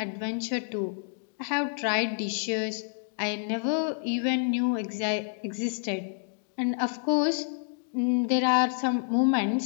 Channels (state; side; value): silent; right; digital silence